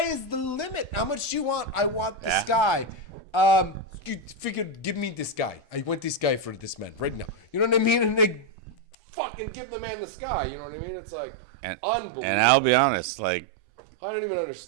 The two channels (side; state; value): left; drops out; at 9.0 s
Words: is the limit. How much do you want? I want the sky. You figured, give me this guy. I want this guy for this man right now. You know what I mean? And they fucking give the man the sky. You know what I mean? It's like unbelievable. And I'll be honest, like, I don't even